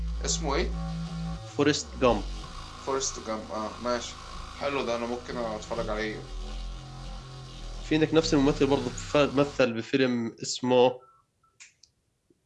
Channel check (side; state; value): both; identical; correlation 1.00